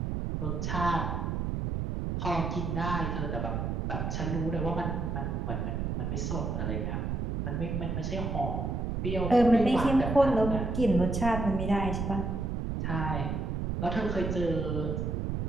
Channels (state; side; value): noise; right; rumble, 1 dB below the sound